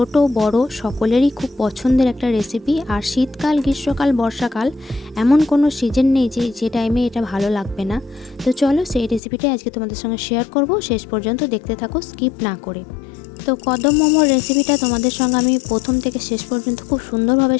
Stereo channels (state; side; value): drops out; right; at 9.2 s